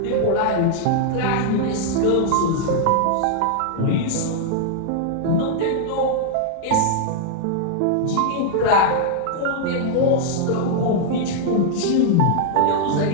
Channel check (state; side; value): different; both; correlation -0.01